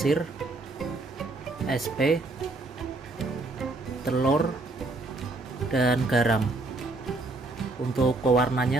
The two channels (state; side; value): quieter; left; 3.1 dB